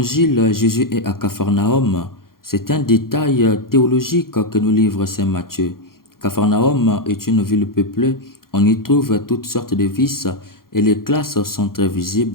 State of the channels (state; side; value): late; right; 0.92 ms